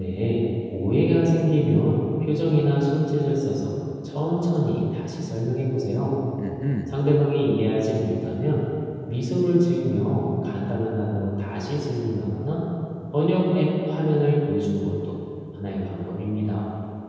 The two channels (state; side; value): identical; both; correlation 1.00